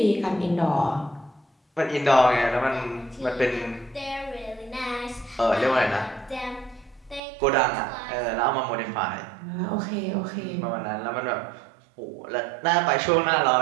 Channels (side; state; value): left; drops out; at 7.2 s